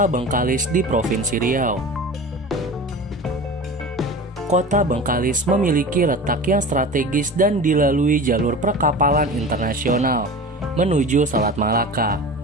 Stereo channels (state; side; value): normal; both; correlation 0.34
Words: Bengkalis di Provinsi Riau. Kota Bengkalis memiliki letak yang strategis dan dilalui jalur perkapalan internasional menuju Selat Malaka.